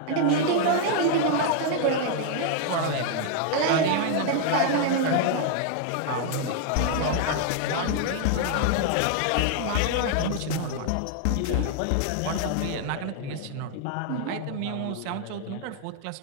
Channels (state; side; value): different; both; correlation 0.00